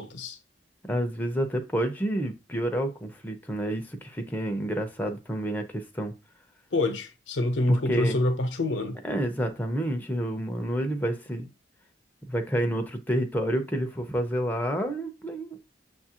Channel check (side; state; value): both; normal; correlation 0.75